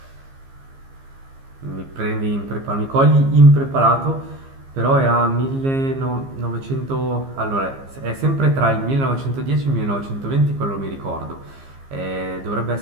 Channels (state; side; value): late; left; 15 ms